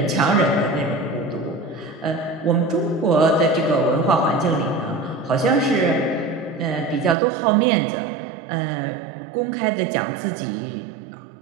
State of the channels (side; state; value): left; drops out; at 7.2 s